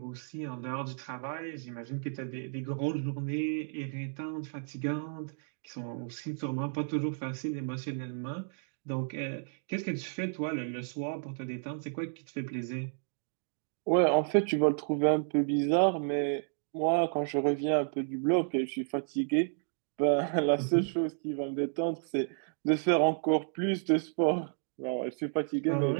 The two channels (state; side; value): silent; left; digital silence